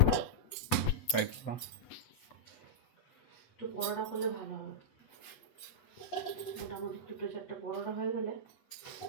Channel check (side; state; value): right; late; 8.1 ms